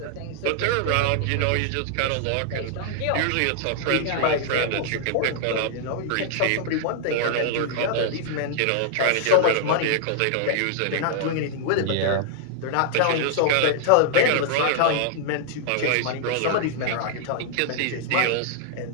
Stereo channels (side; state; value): both; different; correlation -0.01